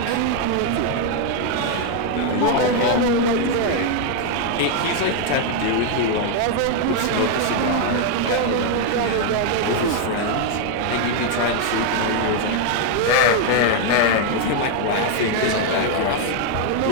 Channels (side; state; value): both; different; correlation 0.01